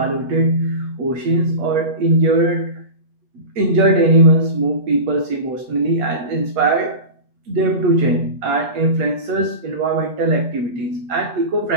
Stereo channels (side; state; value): left; late; 8.0 ms